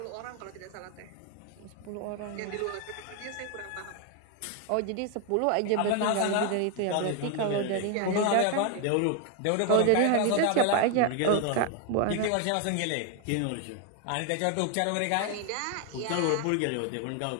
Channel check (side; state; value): both; different; correlation 0.01